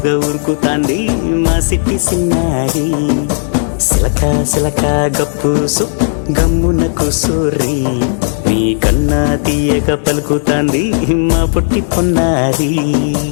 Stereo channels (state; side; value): silent; right; digital silence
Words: ఉరుకుతాంది మా సిట్టి సిన్నారి. సిలక సిలక గప్పుసు గమ్మున కూసూరి మీ కన్నా తీయక పలుకుతాంది మా పొట్టి పొన్నారి.